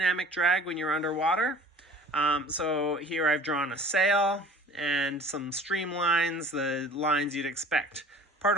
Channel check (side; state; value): both; normal; correlation 0.45